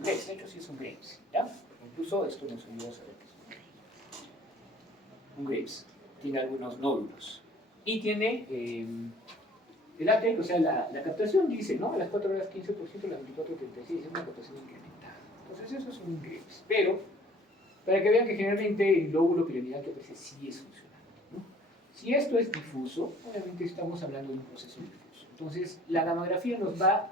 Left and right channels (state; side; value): normal; both; correlation 0.54